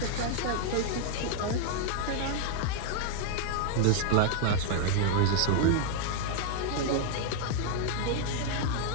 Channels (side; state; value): both; different; correlation 0.00